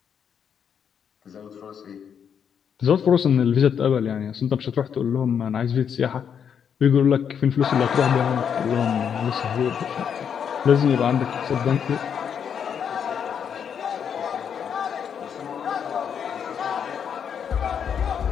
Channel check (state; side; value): quieter; right; 7.7 dB